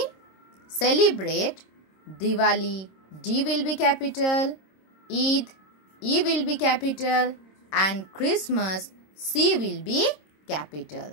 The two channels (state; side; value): late; right; 26 ms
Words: celebrate Diwali, D will be capital, Eid, E will be capital, and Christmas, C will be